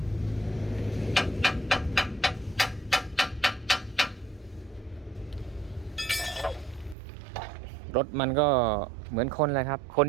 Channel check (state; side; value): drops out; left; at 7.0 s